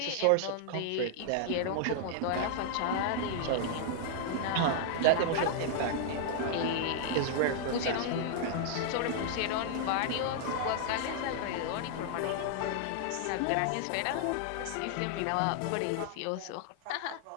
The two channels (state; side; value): different; both; correlation -0.01